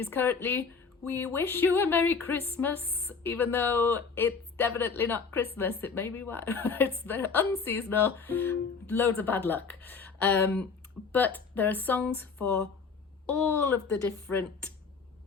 currently "We wish you a Merry Christmas," even though it's definitely not Christmas. It may be it's very unseasonal, loads of bad luck. But there are songs for all of the different,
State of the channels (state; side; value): quieter; right; 5.2 dB